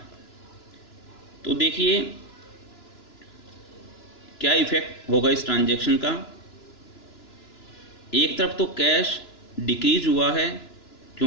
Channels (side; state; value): right; late; 2.9 ms